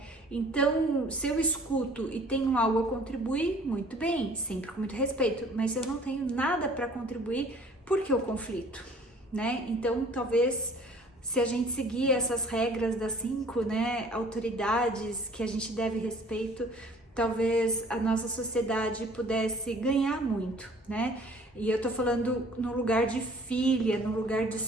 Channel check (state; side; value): normal; both; correlation 0.52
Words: Então, se eu escuto e tenho algo a contribuir, muito bem, sempre com muito respeito, mas se eu não tenho nada para contribuir, por que o conflito, né? Então, talvez, se a gente seguir essas regras das 5, né, autoridades que a gente deve respeito, talvez a nossa sociedade pudesse ganhar muito, né? E eu tô falando no lugar de filha, no lugar de